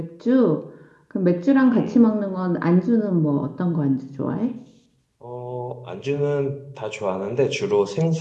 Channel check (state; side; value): identical; both; correlation 1.00